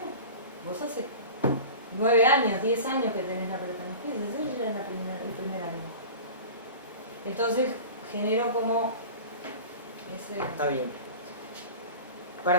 Vos hace 9 años, 10 años que tenés la pelota en los pies, ella es el primer año. Entonces, genero como ese... Está bien.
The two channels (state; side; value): inverted; both; correlation -0.35